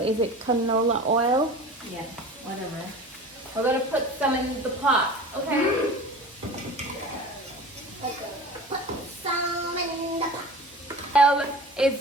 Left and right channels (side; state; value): both; normal; correlation 0.37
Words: Is it canola oil? Yeah, whatever. We're gonna put some in the pot, okay? Okay. Put some in the pot. Oil is